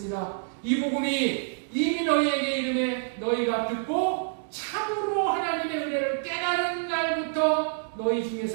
이 복음이 이미 너희에게 이르매 너희가 듣고 참으로 하나님의 은혜를 깨달은 날부터 너희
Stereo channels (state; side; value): silent; left; digital silence